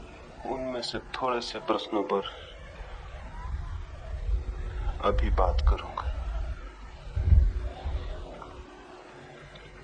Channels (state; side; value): identical; both; correlation 1.00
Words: उनमें से थोड़े से प्रश्नों पर अभी बात करूंगा।